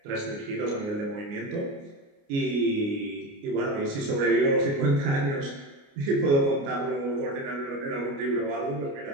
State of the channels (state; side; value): late; left; 29 ms